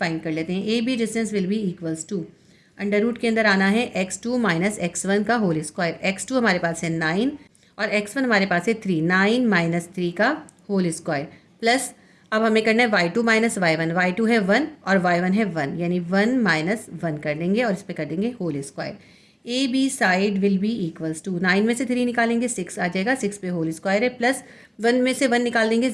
कर लेते हैं। A B distance will be equals to, under root के अंदर आना है x2 माइनस x1 का होल स्क्वायर। x2 हमारे पास है 9 और x1 हमारे पास है 3, 9 माइनस 3 का होल स्क्वायर, प्लस अब हमें करना है y2 माइनस y1। y2 है 1 और y1 है 1, यानी 1 माइनस 1 कर देंगे और इस पर कर देंगे whole square. A B side will be equals to, 9 में से 3 निकालेंगे 6 आ जाएगा, 6 पे होल स्क्वायर है, प्लस 1 में से 1 निकाल देंगे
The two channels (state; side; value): identical; both; correlation 1.00